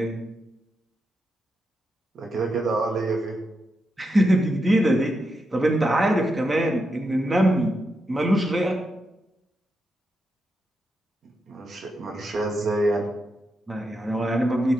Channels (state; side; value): normal; both; correlation 0.85